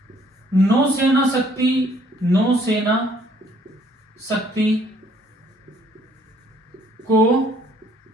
नौसेना शक्ति को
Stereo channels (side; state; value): both; normal; correlation 0.62